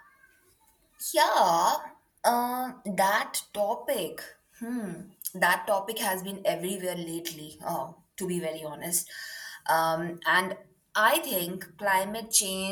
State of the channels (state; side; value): identical; both; correlation 1.00